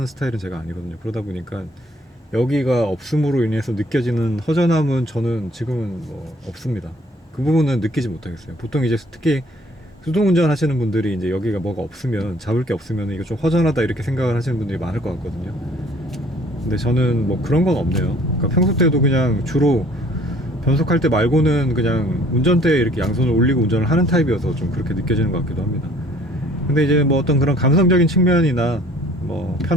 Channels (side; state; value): both; normal; correlation 0.57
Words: 스타일은 제가 아니거든요. 그러다 보니까 여기가 없음으로 인해서 느껴지는 허전함은 저는 지금은 뭐 없습니다. 그 부분은 느끼지 못하겠어요. 보통 이제 특히 수동 운전 하시는 분들이 이제 여기가 뭐가 없으면, 잡을 게 없으면 이거 좀 허전하다 이렇게 생각을 하시는 분들이 많을 것 같거든요. 근데 저는 뭐 그런 건 없네요. 그러니까 평소 때도 그냥 주로 변속할 때 말고는 그냥 운전대에 이렇게 양손을 올리고 운전을 하는 타입이어서 좀 그렇게 느껴지는 것 같기도 합니다. 근데 이제 뭐 어떤 그런 감성적인 측면이나 뭐